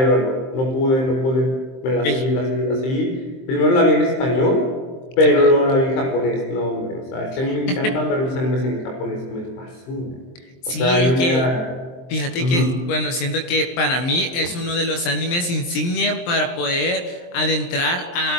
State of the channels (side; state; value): right; late; 23 ms